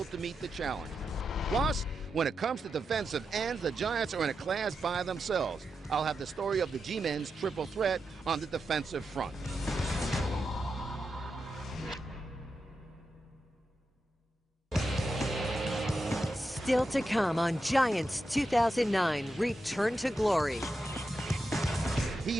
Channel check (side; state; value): both; normal; correlation 0.88